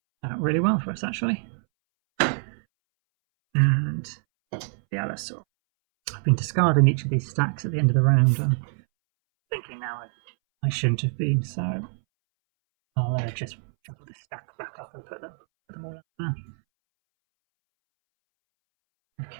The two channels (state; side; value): silent; left; 61 dB below the other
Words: Really well for us actually. And the Allosaur. I've been discarding each of these stacks at the end of the round. I'm thinking now I shouldn't have been, so I'll just shuffle this stack back up and put them all up there.